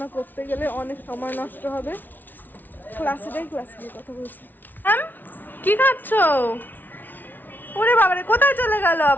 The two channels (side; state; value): right; late; 0.087 ms